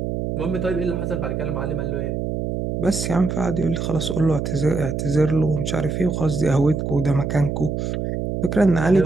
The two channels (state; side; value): noise; right; hum, 2 dB below the sound